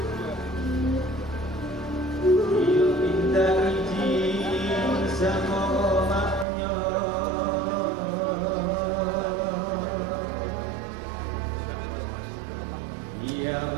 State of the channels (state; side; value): drops out; left; at 6.5 s